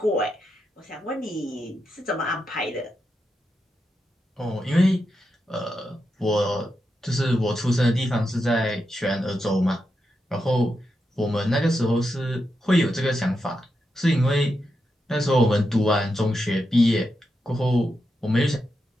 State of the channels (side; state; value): both; normal; correlation 0.86